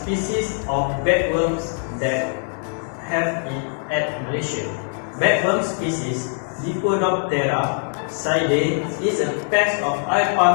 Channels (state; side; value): silent; right; 59 dB below the other